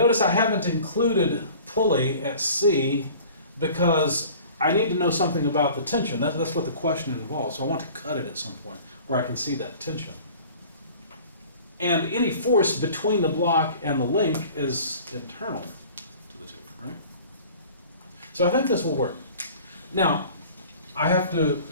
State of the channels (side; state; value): both; inverted; correlation -0.46